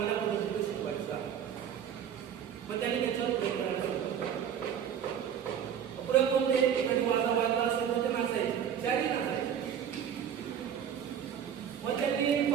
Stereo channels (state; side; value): quieter; left; 8.7 dB